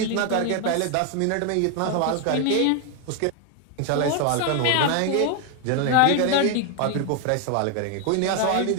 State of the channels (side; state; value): both; different; correlation 0.01